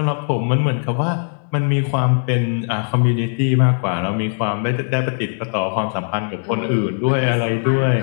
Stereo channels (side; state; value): right; silent; 65 dB below the other